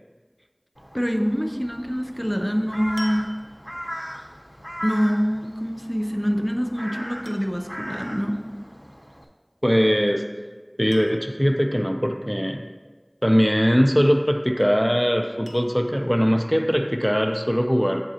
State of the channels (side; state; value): both; identical; correlation 1.00